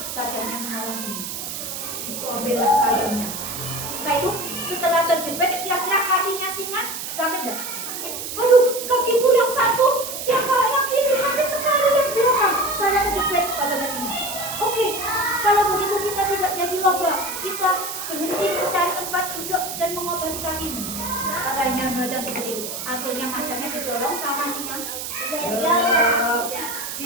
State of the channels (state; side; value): noise; right; hiss, 6 dB below the sound